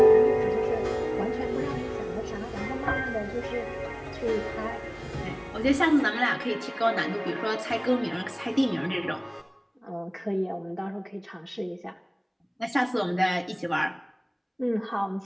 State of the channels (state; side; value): identical; both; correlation 1.00